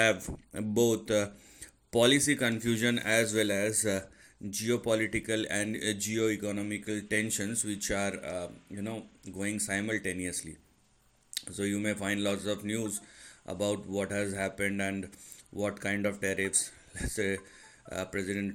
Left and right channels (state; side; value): identical; both; correlation 1.00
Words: both policy confusion as well as geopolitical and geo-economical tensions which are going simultaneously. So you may find lots of news about what has happened and what kind of tariffs. Let's say